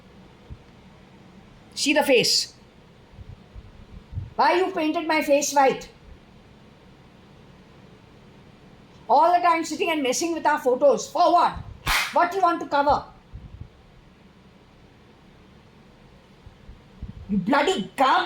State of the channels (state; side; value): identical; both; correlation 1.00